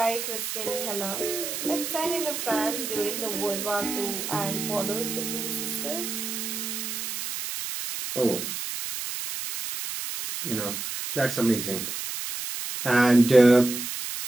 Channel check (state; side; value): noise; right; hiss, 5 dB below the sound